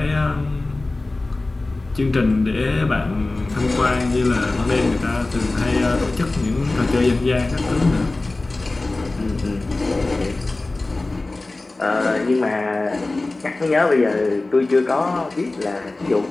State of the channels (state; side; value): quieter; right; 3.1 dB